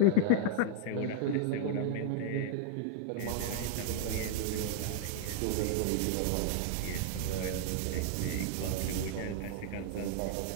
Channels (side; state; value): both; different; correlation -0.01